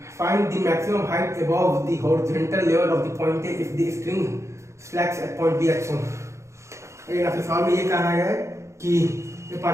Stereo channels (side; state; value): left; late; 0.14 ms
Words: Find the maximum height above the horizontal level of the point A if the string slacks at point B at shown. अगर आपके सवाल में ये कहा गया है कि a